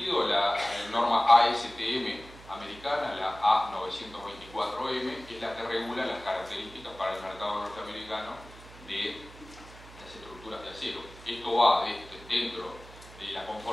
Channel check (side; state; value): right; noise; hum, 19 dB below the sound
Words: la norma ASTM americana, la A924M, es la que regula las características para el mercado norteamericano de las estructuras de acero. Esto va dentro de la